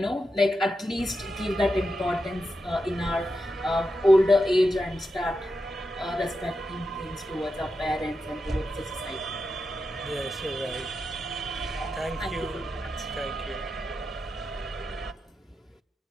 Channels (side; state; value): both; normal; correlation 0.88